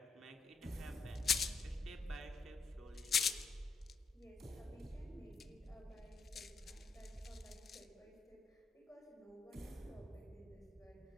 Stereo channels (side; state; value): right; quieter; 4.3 dB